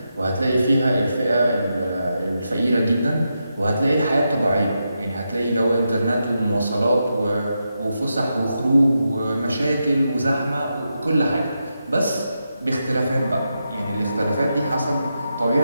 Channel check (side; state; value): both; inverted; correlation -0.86